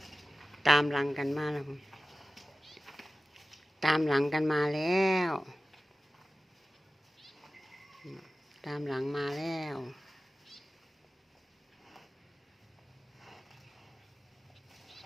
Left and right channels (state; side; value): normal; both; correlation 0.95